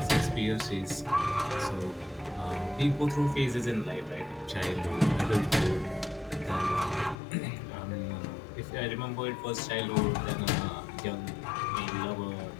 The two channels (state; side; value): drops out; right; at 7.2 s